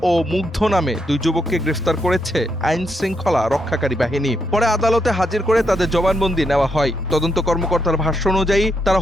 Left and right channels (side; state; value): both; normal; correlation 0.80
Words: ও মুগ্ধ নামে 2 যুবককে গ্রেফতার করেছে আইন শৃঙ্খলা রক্ষাকারী বাহিনী। পরে আদালতে হাজির করে তাদের জবানবন্দি নেওয়া হয়। তদন্ত কর্মকর্তার ভাষ্য অনুযায়ী তারা